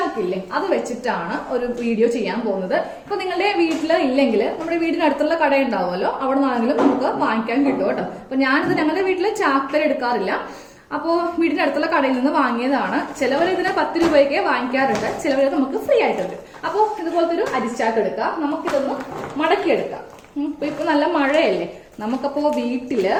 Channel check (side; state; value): both; identical; correlation 1.00